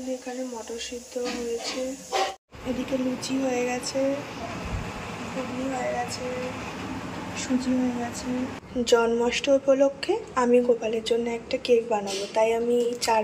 এখানে মটর সিদ্ধ হয়েছে, এদিকে লুচি হয়ে গেছে, ঘুগনি হয়ে গেছে, সুজি হয়ে গেছে। জন্মাষ্টমী উপলক্ষে আমি গোপালের জন্য একটা কেক বানাবো, তাই আমি 4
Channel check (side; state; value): both; identical; correlation 1.00